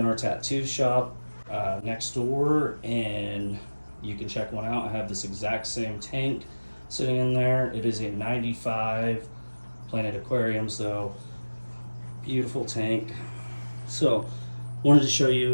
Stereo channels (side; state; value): both; inverted; correlation -1.00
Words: our tattoo shop next door and you can check one out. I have this exact same tank sitting in there. It is a 95 Planet Aquariums though. Beautiful tank. So wanted to show